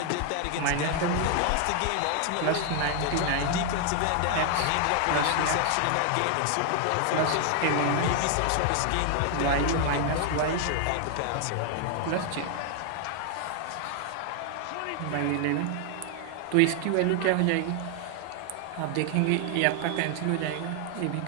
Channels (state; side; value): different; both; correlation 0.00